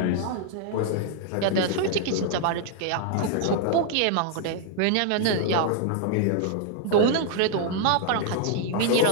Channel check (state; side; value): different; both; correlation 0.00